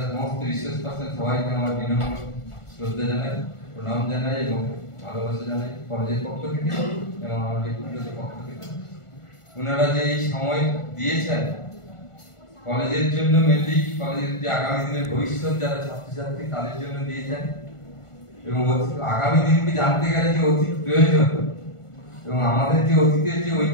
সমস্ত রিসোর্স পার্সন সবাইকে আমার বিনম্র শ্রদ্ধা জানাই, প্রণাম জানাই এবং ভালোবাসা জানাই কলেজের পক্ষ থেকে এবং আমার ব্যক্তিগত পক্ষ থেকে। ওনারা যে এই সময় দিয়েছেন কলেজের জন্য, মেনলি কলেজের যে আগামী দিনের ভবিষ্যৎ যারা ছাত্রছাত্রী তাদের জন্য দিয়েছেন এবং আগামী দিনকে জানতে গেলে যে অতীত প্রয়োজন এবং আমাদের যে অতীতের যে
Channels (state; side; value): late; right; 1.4 ms